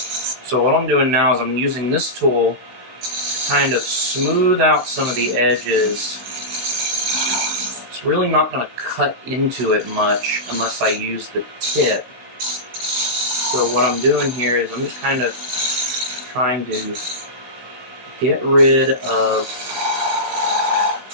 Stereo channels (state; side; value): late; left; 16 ms